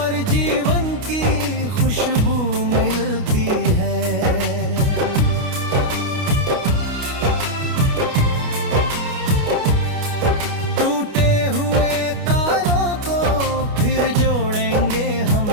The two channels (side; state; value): left; late; 29 ms